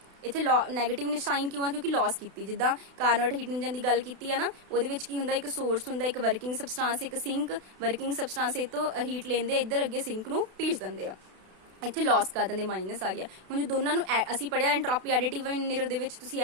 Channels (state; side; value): late; left; 32 ms